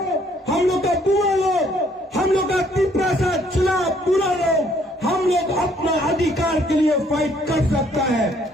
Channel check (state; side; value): normal; both; correlation 0.64